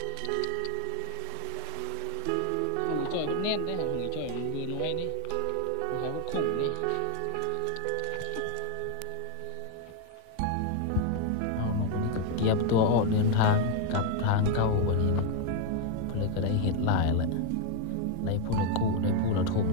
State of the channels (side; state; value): both; different; correlation 0.00